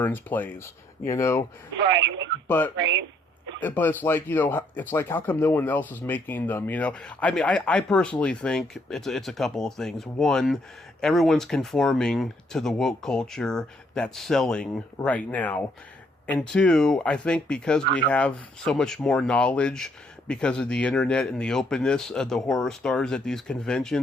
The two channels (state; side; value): normal; both; correlation 0.69